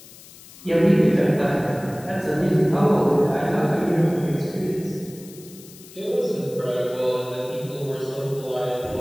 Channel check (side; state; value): left; noise; hiss, 20 dB below the sound